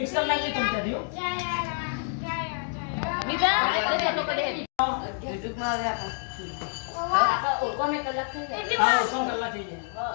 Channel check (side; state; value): right; silent; 60 dB below the other